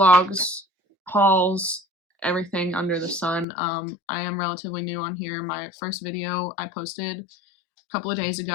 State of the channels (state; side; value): drops out; right; at 3.5 s